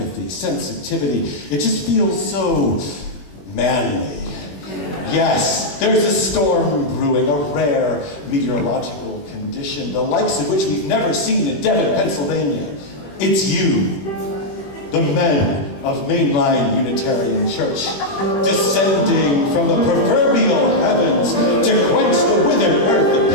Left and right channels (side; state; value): right; late; 21 ms